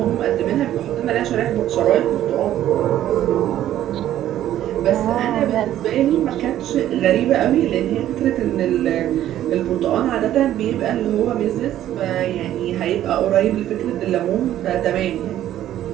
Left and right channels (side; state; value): left; quieter; 12.4 dB